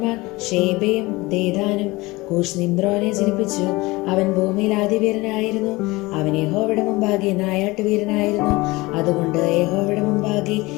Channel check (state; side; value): quieter; right; 21.9 dB